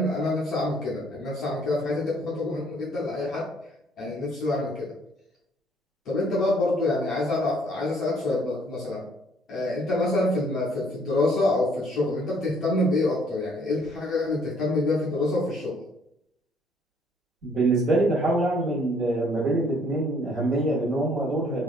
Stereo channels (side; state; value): both; normal; correlation 0.63